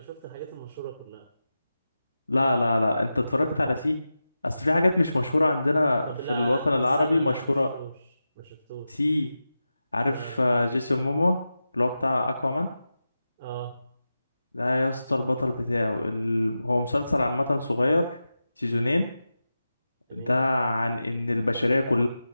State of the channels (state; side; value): inverted; both; correlation -0.92